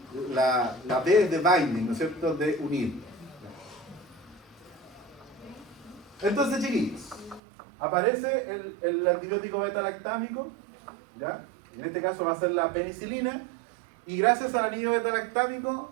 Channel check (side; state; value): left; drops out; at 7.4 s